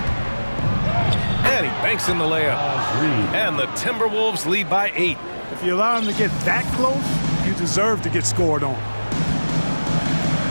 And he banks in the layup. And the Timberwolves lead by 8. If you allow him to get that close, you deserve to get scored on.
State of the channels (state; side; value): inverted; both; correlation -1.00